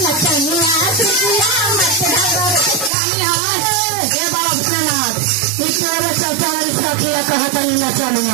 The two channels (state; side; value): drops out; left; at 2.9 s